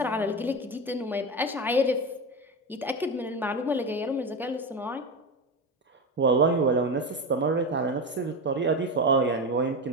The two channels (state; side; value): normal; both; correlation 0.19